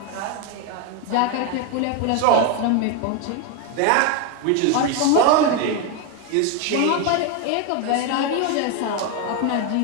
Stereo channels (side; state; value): both; different; correlation 0.01